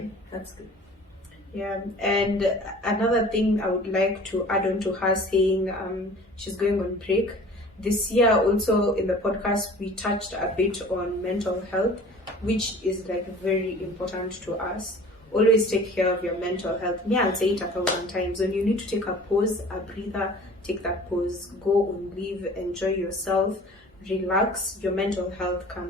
that's good. Yeah, and another thing I would like to add on to her saying she's going on break. This year also in the podcast we touched a bit on mental health, which is like very important to us. Always take care of your mental health. I'll say it 1,000 times. When you need to take a pause, a breather, take that pause. Go on leave, enjoy yourself, relax. Your mental health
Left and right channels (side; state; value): both; normal; correlation 0.46